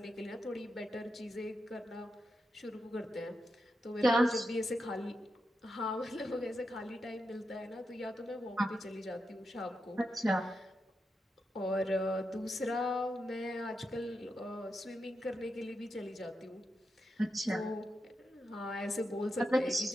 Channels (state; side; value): normal; both; correlation 0.87